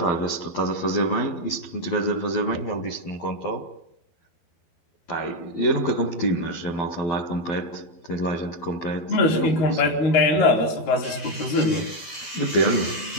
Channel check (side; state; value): right; late; 12 ms